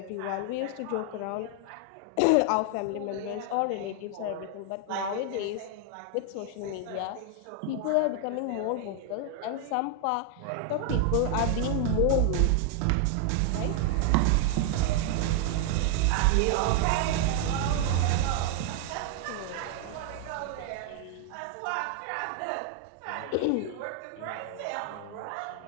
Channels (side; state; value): both; different; correlation 0.00